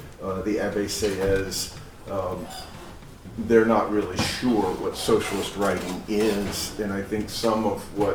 the Abbé Sieyès. They're not really sure what socialist writing is, and I think some of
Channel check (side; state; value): both; identical; correlation 1.00